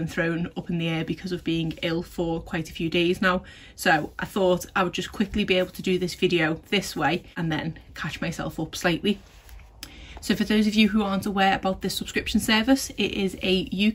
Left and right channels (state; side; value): identical; both; correlation 1.00